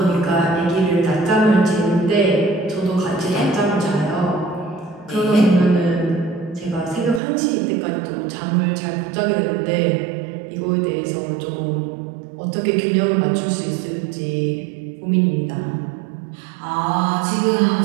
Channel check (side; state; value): left; drops out; at 7.2 s